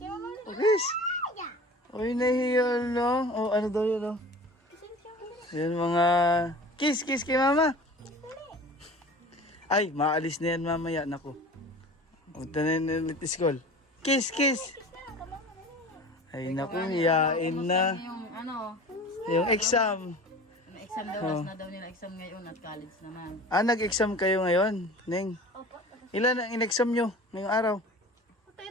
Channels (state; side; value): normal; both; correlation 0.40